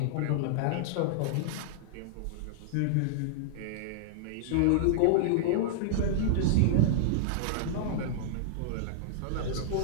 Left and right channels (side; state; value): both; different; correlation -0.01